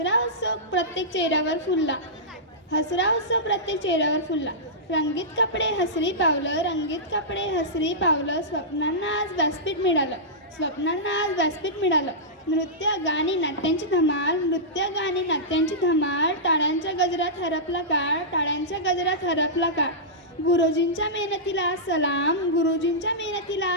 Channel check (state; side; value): normal; both; correlation -0.15